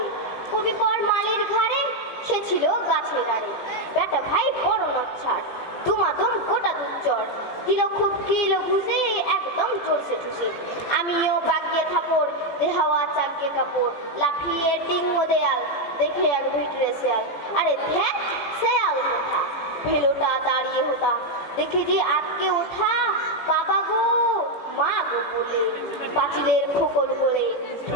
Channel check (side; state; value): right; late; 17 ms